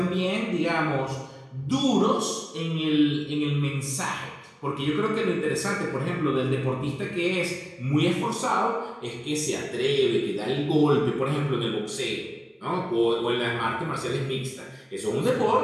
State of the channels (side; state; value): both; identical; correlation 1.00